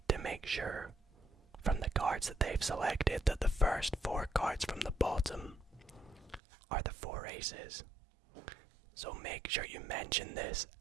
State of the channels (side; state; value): left; drops out; at 6.4 s